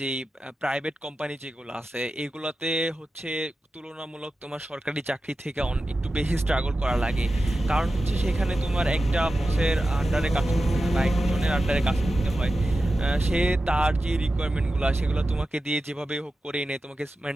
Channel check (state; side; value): normal; both; correlation 0.93